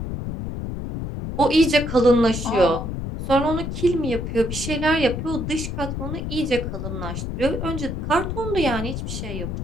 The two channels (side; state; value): left; noise; rumble, 5 dB below the sound